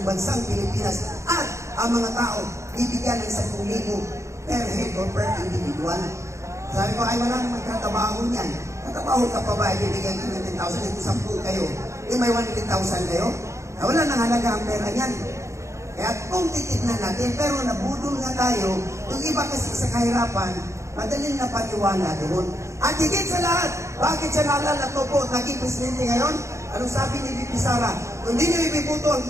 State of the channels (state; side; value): late; left; 0.14 ms